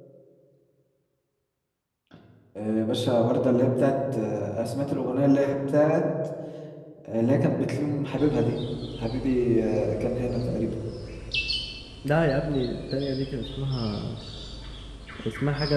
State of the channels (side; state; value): both; identical; correlation 1.00